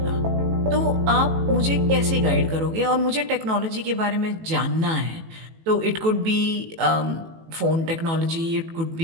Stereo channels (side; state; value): left; late; 18 ms